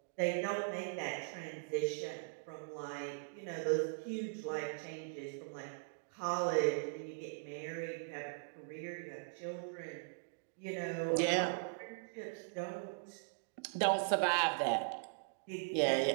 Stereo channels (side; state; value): left; silent; digital silence